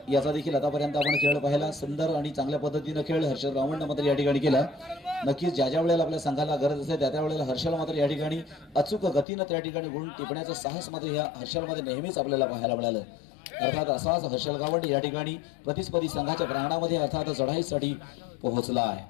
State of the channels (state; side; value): drops out; right; at 9.2 s